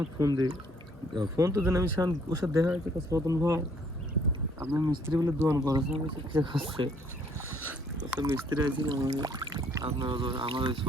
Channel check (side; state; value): both; normal; correlation 0.64